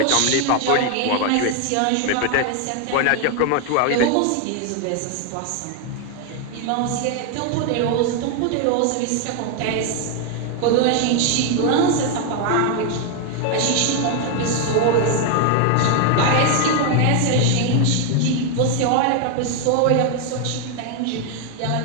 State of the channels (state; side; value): different; both; correlation 0.00